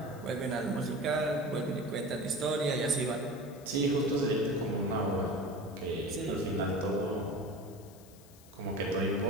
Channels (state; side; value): noise; left; hiss, 23 dB below the sound